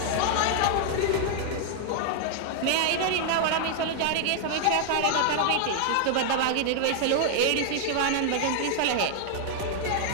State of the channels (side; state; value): both; different; correlation 0.00